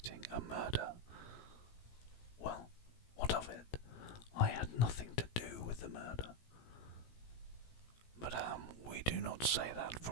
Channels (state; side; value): late; right; 17 ms